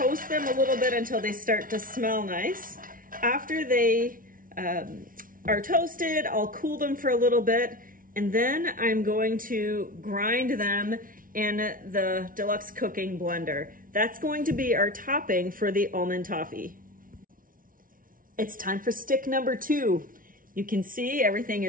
them a little bit until they start to smell nice. After they are toasted, I'll cool them for a little bit, and then I'm going to grind them in the deluxe cooking blender. That's going to be our topping for the almond toffee. It's time for stick number 2. You can see everything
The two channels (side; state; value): left; late; 0.40 ms